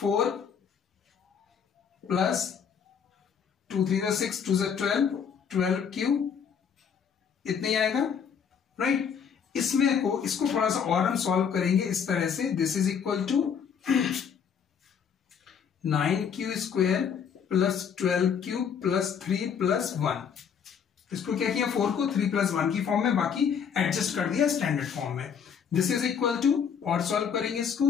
plus 2 3 6 2 12q, इतने ही आएगा, राइट। इसको थोड़ा सा और हम सॉल्व करेंगे इस तरह से, this is equal to 9q square plus 12q plus 3 plus 1। इसको क्या किया, 4 को 3 प्लस 1 की फॉर्म में, बाकी एडजस्ट कर दिया स्टैंडर्ड फॉर्म में। दिस इज इक्वल टू, और सॉल्व करेंगे इसको,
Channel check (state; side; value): quieter; right; 7.2 dB